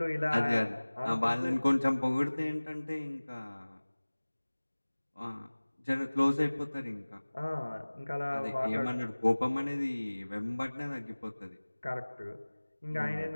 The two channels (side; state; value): both; inverted; correlation -1.00